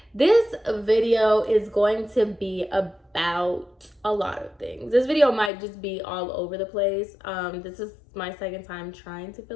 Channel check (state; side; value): drops out; right; at 5.5 s